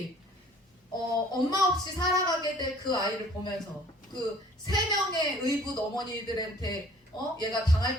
엄마 없이 살아가게 될 그 아이를 보면서 그 3명의 의붓 어머니들한테 얘가 당할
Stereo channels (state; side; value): normal; both; correlation 0.53